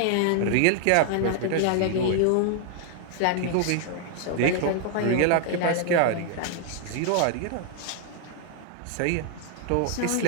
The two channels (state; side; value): different; both; correlation 0.00